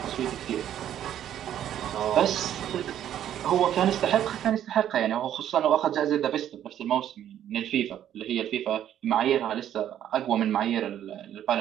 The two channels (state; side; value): quieter; left; 10.8 dB